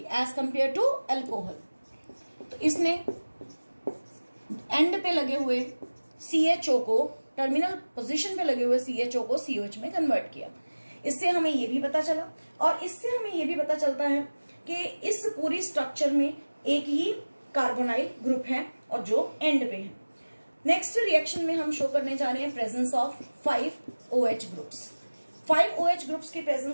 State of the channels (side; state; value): both; inverted; correlation -1.00